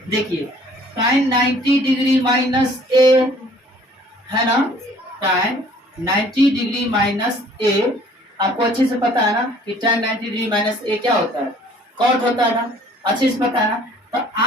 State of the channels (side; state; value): both; normal; correlation 0.55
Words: देखिए tan 90 डिग्री माइनस a, है ना, tan 90 डिग्री माइनस a, आपको अच्छे से पता है ना कि tan 90 डिग्री माइनस a क्या होता है, cot होता है ना, अच्छे से पता है ना। तो